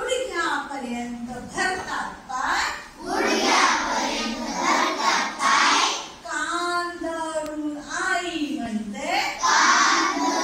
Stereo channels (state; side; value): identical; both; correlation 1.00